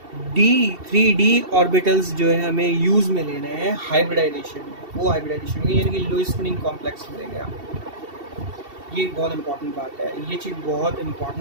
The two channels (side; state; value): left; late; 2.7 ms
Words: D3D ऑर्बिटल्स जो है हमें यूज़ में लेने हैं हाइब्रिडाइजेशन में. वो हाइब्रिडाइजेशन में यानी कि लो स्पिनिंग कॉम्प्लेक्स मिलेंगे आपको. ये बहुत इंपॉर्टेंट बात है, ये चीज़ बहुत